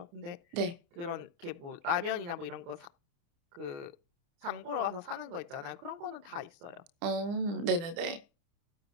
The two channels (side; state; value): left; late; 30 ms